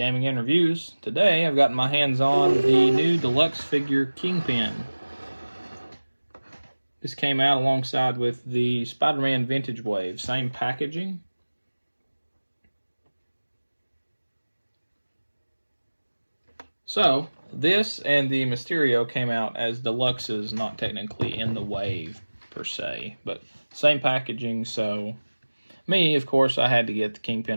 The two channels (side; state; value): both; inverted; correlation -1.00